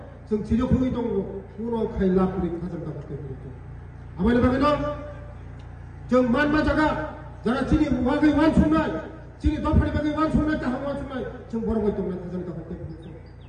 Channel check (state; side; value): identical; both; correlation 1.00